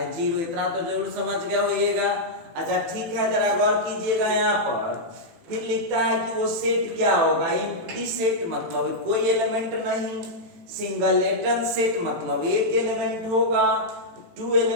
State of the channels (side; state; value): left; late; 18 ms